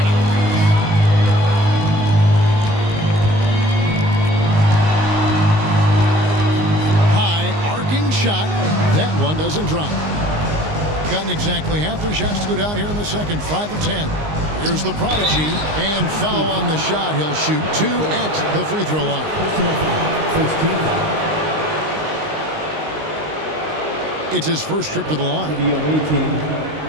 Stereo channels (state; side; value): late; left; 19 ms